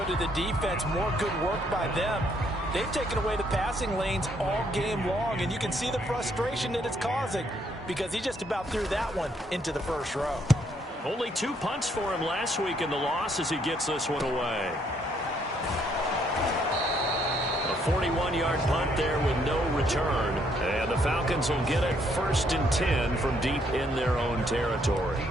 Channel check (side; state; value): both; normal; correlation 0.70